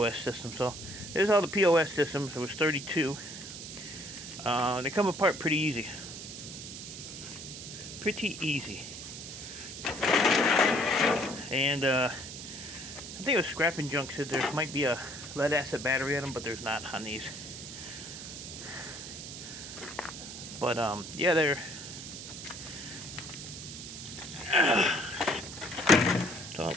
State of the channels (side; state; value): right; noise; hiss, 10 dB below the sound